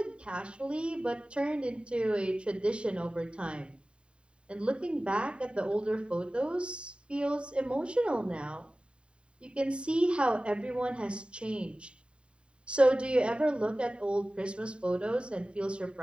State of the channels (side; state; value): left; late; 0.054 ms